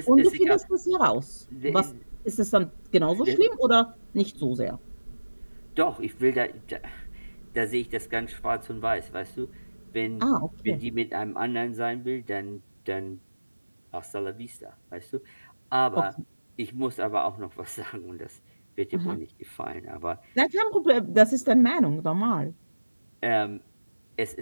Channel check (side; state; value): both; inverted; correlation -1.00